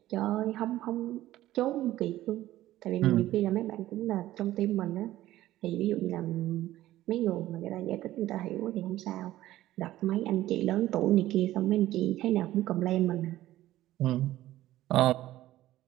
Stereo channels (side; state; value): left; quieter; 14.8 dB